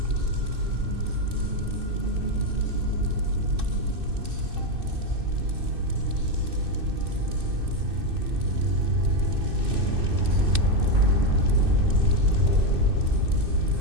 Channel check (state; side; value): late; left; 2.6 ms